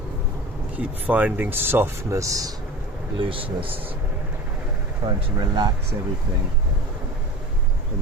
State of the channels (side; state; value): both; normal; correlation 0.35